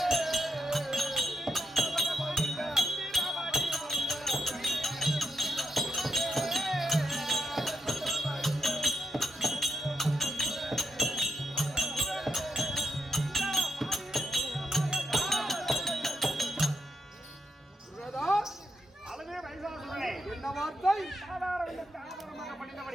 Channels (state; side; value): normal; both; correlation 0.83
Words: மைசாசுரனே, என்ன வார்த்தை? ஆதாரங்களுக்கு ஆதாரமாக